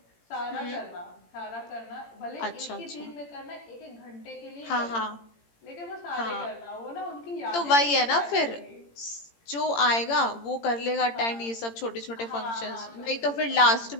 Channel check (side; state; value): right; late; 17 ms